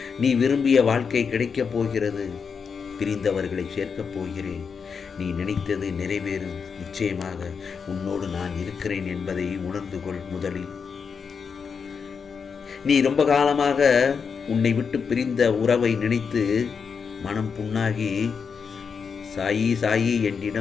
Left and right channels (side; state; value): right; quieter; 6.0 dB